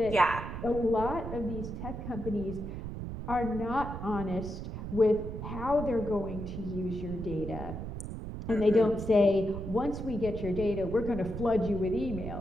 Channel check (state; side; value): noise; right; rumble, 7 dB below the sound